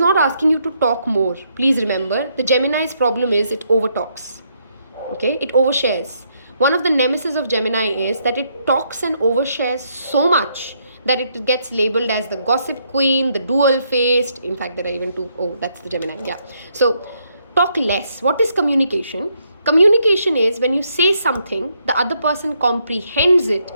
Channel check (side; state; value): both; inverted; correlation -0.74